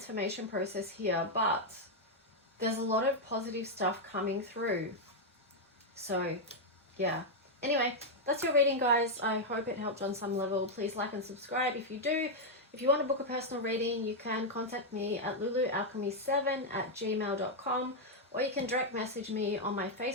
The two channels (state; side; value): normal; both; correlation -0.01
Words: process here, but there's a lot of positive stuff coming through. So, yeah. Anyway, that's your reading, guys. I hope it helped on some level. Please like and subscribe if you do. If you want to book a personal reading, you can contact me at lulualchemy7@gmail.com, or you can direct message me on my